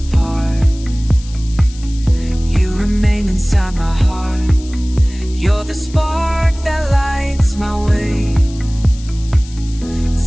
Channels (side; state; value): left; noise; hiss, 20 dB below the sound